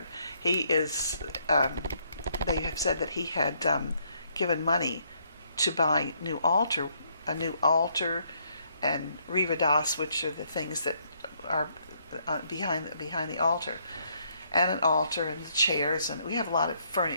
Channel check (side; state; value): both; inverted; correlation -0.71